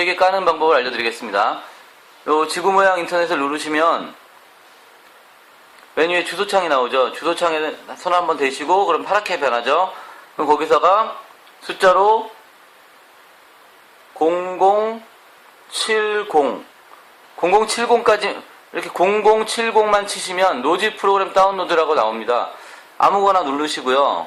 까는 방법을 알려드리겠습니다. 요 지구 모양 인터넷을 누르시면 메뉴에 주소창이 나오죠. 주소창에 손 한번 대시고 그럼 파랗게 변하죠. 그럼 거기서가 숫자로 0070까지 이렇게 0070만 치시면 로지 프로그램 다운로드라고 나옵니다. 아무거나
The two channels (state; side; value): identical; both; correlation 1.00